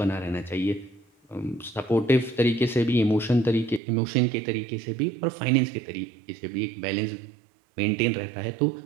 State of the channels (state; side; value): drops out; left; at 3.8 s